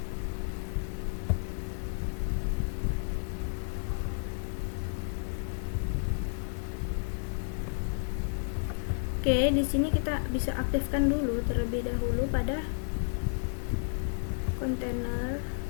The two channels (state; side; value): silent; right; digital silence